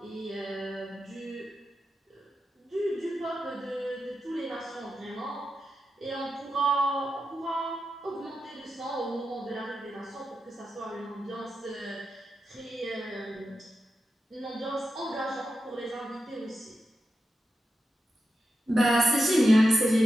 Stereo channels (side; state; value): both; normal; correlation 0.89